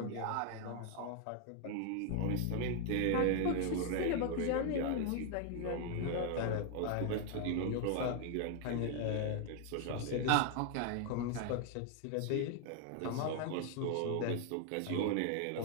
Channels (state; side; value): different; both; correlation 0.00